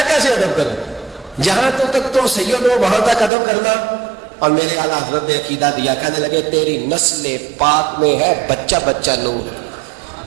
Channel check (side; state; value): left; drops out; at 3.3 s